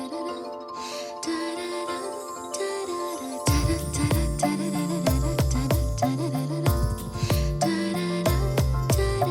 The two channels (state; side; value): identical; both; correlation 1.00